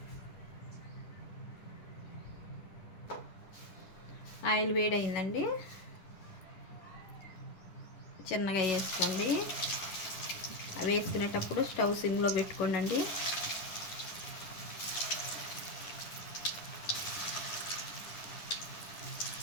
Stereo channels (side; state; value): right; late; 10 ms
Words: ఆయిల్ వేడైందండి, చిన్నగా వేసుకోండి. వేసుకునేటప్పుడు స్టవ్ సిమ్లో పెట్టుకోండి.